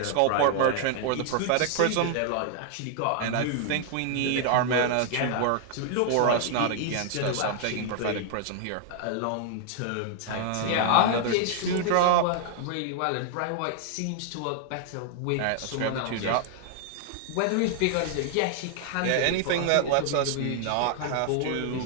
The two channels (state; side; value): different; both; correlation 0.00